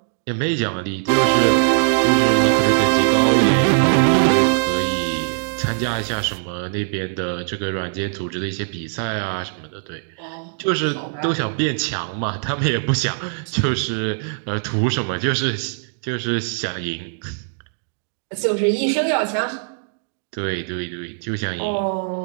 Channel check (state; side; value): silent; left; digital silence